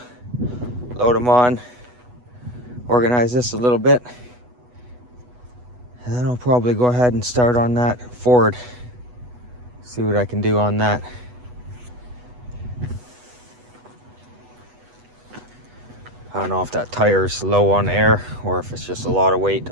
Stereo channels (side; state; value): left; late; 8.2 ms